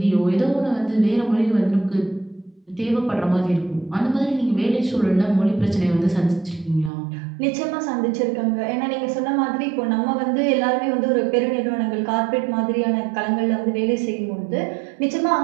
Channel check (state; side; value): drops out; left; at 6.9 s